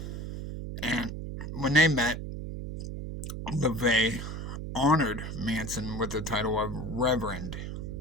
And when they met, LaVey honored Manson with the title of Reverend,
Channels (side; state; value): right; noise; hum, 6 dB below the sound